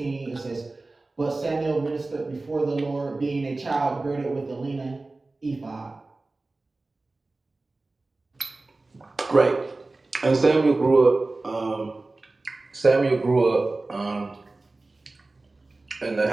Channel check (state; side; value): quieter; left; 3.2 dB